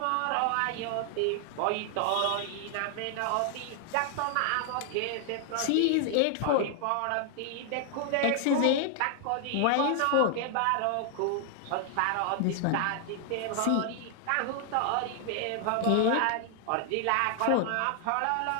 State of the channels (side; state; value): both; different; correlation 0.00